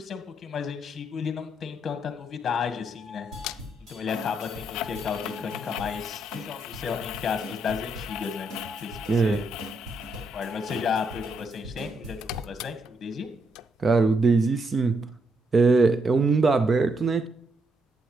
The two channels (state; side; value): normal; both; correlation 0.77